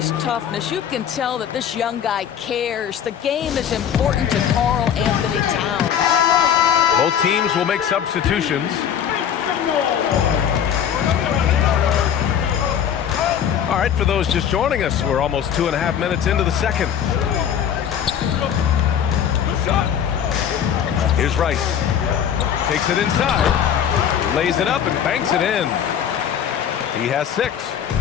toughness. You can tell that this young guy cares. The game is important to Karl Anthony Towns. Both teams will make substitutions. All right, for those just joining us, we're almost 2.5 minutes into the second. Here's Rice. Takes it inside, lays it up and banks it in. He has 6.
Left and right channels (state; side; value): quieter; right; 8.8 dB